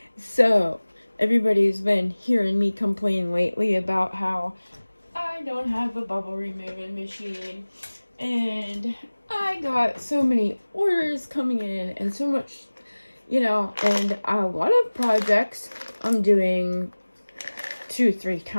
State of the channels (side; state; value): both; inverted; correlation -1.00